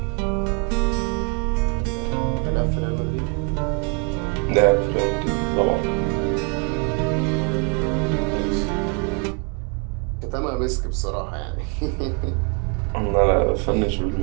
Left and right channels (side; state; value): left; quieter; 36.4 dB